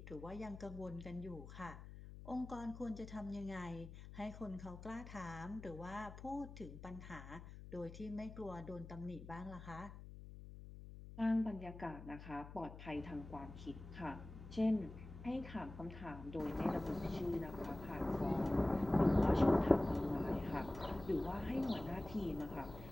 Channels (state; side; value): noise; left; hum, 13 dB below the sound